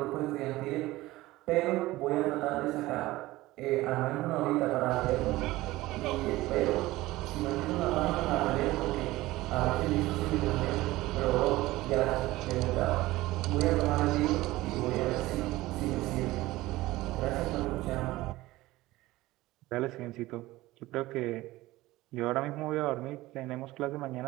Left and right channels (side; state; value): left; quieter; 18.2 dB